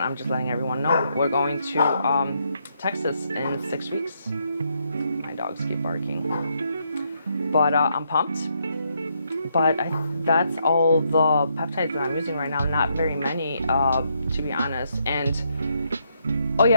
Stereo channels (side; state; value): both; inverted; correlation -0.76